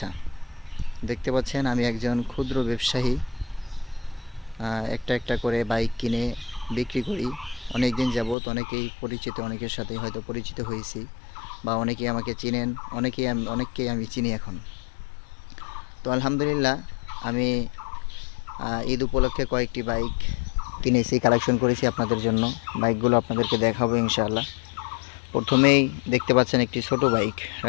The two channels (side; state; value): right; drops out; at 8.3 s